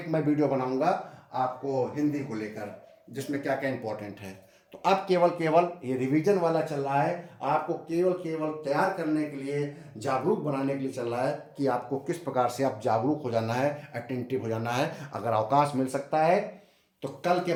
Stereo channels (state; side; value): identical; both; correlation 1.00